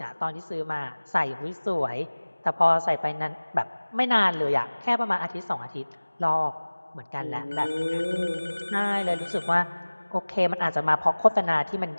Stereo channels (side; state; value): both; inverted; correlation -1.00